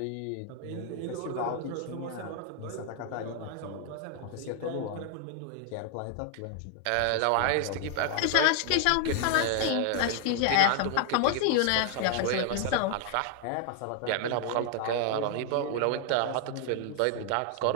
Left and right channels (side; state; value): both; different; correlation 0.00